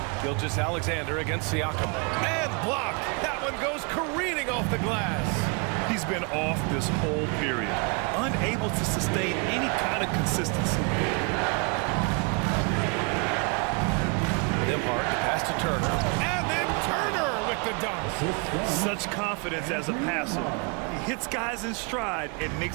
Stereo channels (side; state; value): left; quieter; 33.2 dB